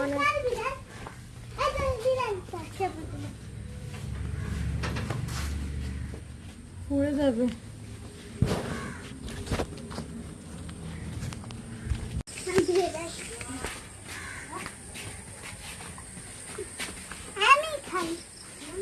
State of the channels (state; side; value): identical; both; correlation 1.00